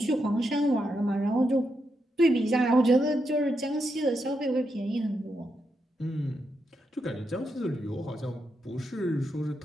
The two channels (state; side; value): normal; both; correlation 0.83